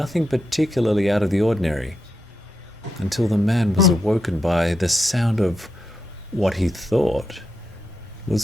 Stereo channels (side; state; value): both; normal; correlation 0.85